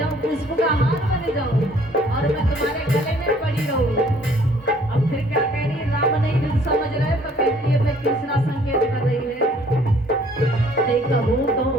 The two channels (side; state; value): both; normal; correlation 0.58